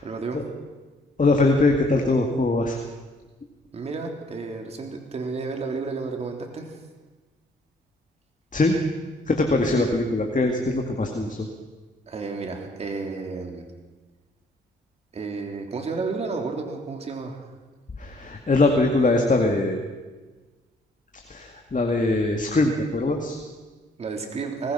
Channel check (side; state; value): both; normal; correlation 0.63